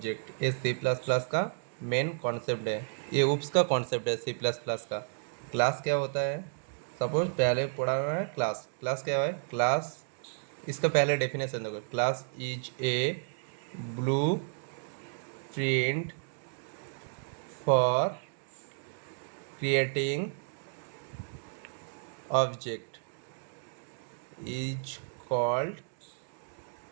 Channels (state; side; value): silent; left; digital silence